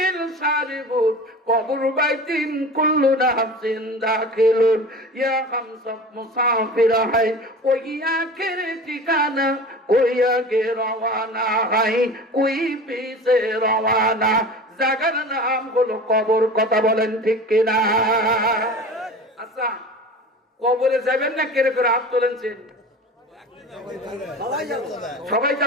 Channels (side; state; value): both; normal; correlation 0.36